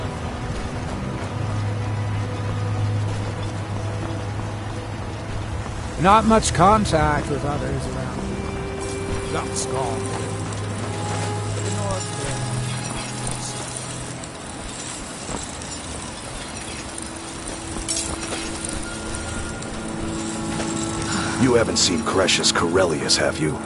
Not much contact with others around. That's gone. You haven't seen Cretius Corellius, have you?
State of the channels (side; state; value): both; identical; correlation 1.00